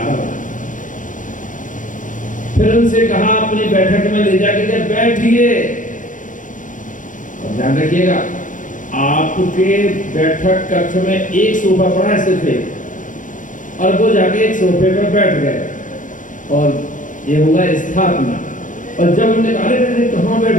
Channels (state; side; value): late; right; 0.38 ms